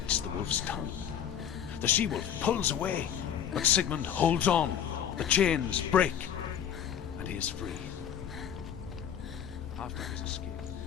the wolf's tongue. The she-wolf pulls away, but Sigmund holds on. The chains break, and he is free. After his escape,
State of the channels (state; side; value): quieter; right; 9.0 dB